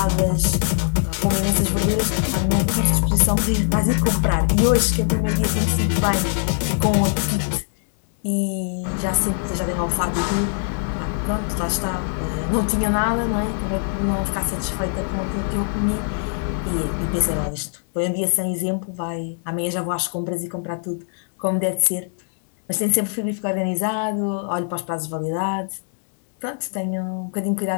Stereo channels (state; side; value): silent; right; 64 dB below the other